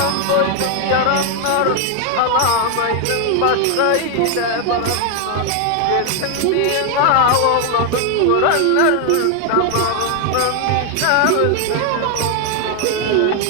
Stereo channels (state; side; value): different; both; correlation 0.01